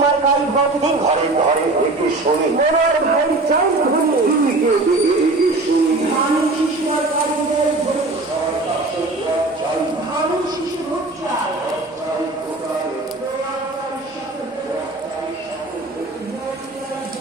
মার্কায় ভোট দিন ঘরে ঘরে এটি শুনি, মনোয়ার ভাই চাই ধনী ধানের শিশু মার্কায় ভোট দিন ধানের শিশু ভোট চাই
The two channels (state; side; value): quieter; left; 3.1 dB